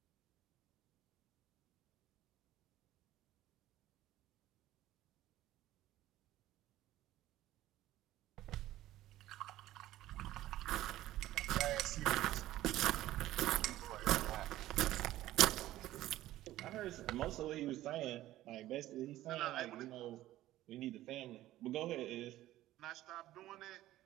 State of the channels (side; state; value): left; quieter; 14.9 dB